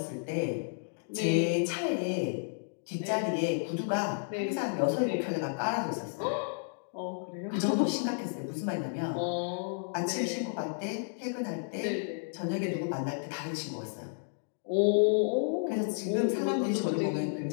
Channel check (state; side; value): silent; right; digital silence